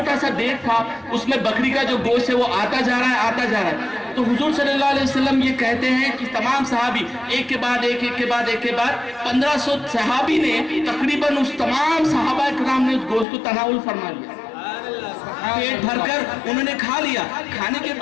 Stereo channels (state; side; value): drops out; right; at 13.2 s